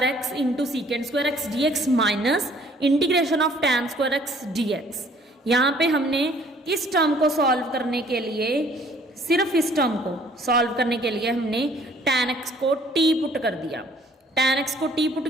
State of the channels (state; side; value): normal; both; correlation 0.58